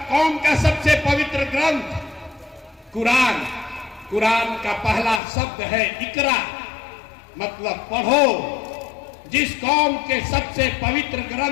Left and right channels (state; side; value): drops out; right; at 5.2 s